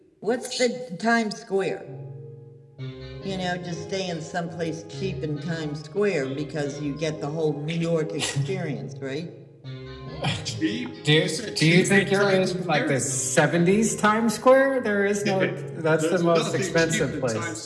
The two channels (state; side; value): identical; both; correlation 1.00